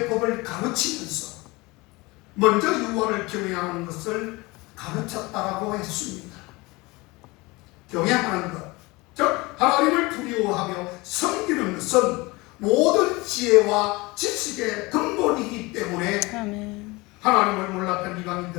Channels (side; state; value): right; quieter; 23.4 dB